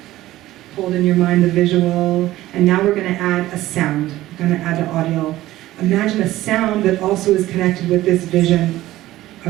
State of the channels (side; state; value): left; quieter; 15.7 dB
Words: Hold in your mind the visual. And now we're going to add a sound. We're going to add the audio. Imagine a sound that also is connected with this vision